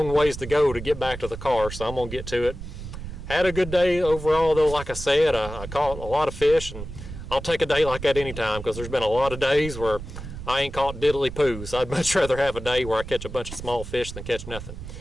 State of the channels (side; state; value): right; noise; rumble, 10 dB below the sound